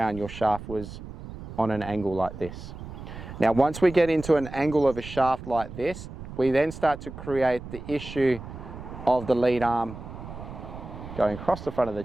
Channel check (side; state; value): right; noise; rumble, 12 dB below the sound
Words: your shaft was on an angle like this. Now, once we get into an angle of a shaft like this, we then start to create the issue of the lead arm going across the front of the